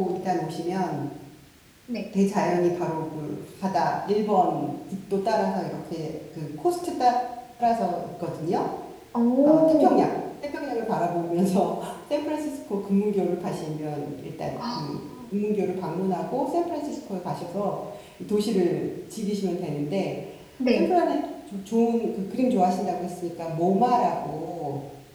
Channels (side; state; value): both; identical; correlation 1.00